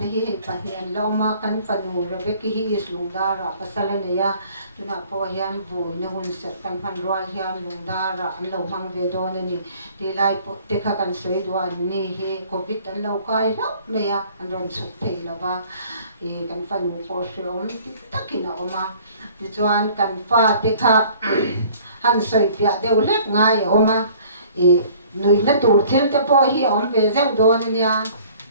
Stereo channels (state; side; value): inverted; both; correlation -0.53